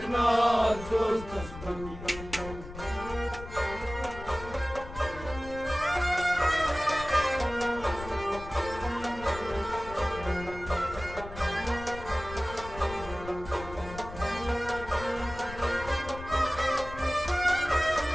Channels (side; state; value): left; noise; rumble, 13 dB below the sound